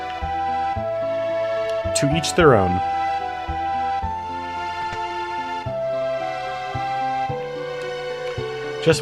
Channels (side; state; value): both; identical; correlation 1.00